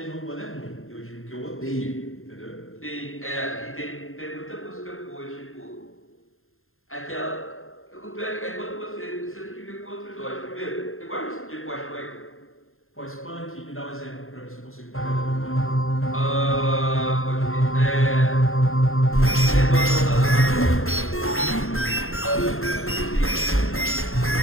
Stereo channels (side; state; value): right; late; 0.61 ms